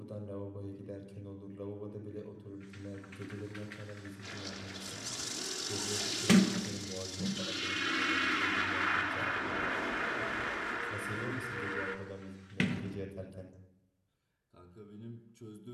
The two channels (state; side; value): identical; both; correlation 1.00